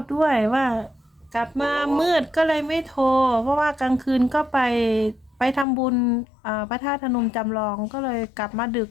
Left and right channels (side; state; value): right; drops out; at 5.7 s